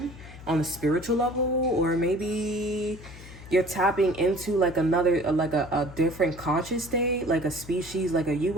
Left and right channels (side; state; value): left; noise; hum, 16 dB below the sound